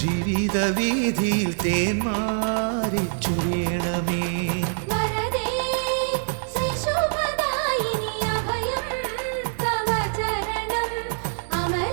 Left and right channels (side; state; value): left; silent; 62 dB below the other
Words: ജീവിത വീതിയിൽ തേന്മാരി ചൊരിയണമേ.